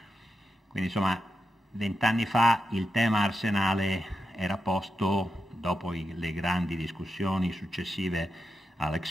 Quindi insomma 20 anni fa il tema arsenale era posto dopo le grandi discussioni successive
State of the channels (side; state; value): both; normal; correlation 0.87